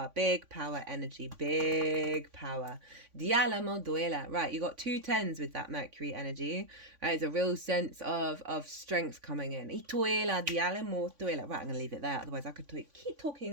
energy, big power. Dialamo duela. Right, you got 2 10s with that Mercury energy. Right, it's a real sense of strength coming in. Ituela, dialamo duela. Right, I'm going to leave it there. Otherwise I could keep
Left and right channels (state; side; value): late; left; 3.5 ms